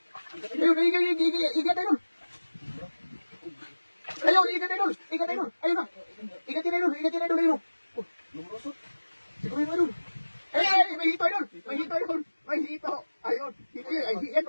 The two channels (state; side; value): inverted; both; correlation -1.00